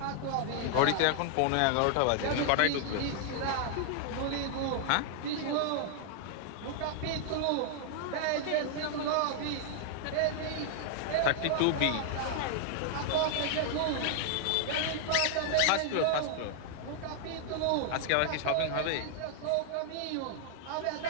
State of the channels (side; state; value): both; different; correlation -0.01